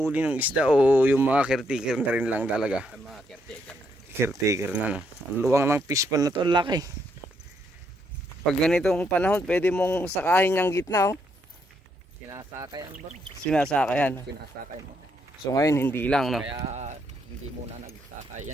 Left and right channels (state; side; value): normal; both; correlation 0.75